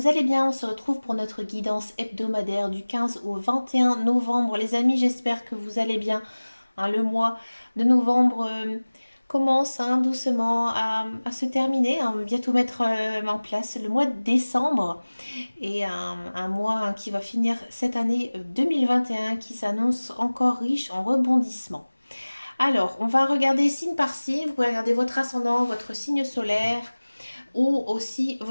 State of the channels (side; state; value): both; inverted; correlation -1.00